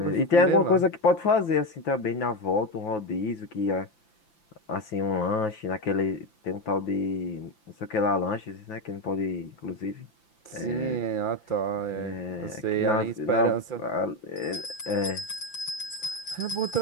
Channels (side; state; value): right; late; 5.9 ms